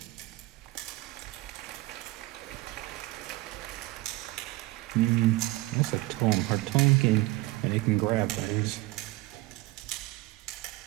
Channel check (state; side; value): quieter; left; 20.0 dB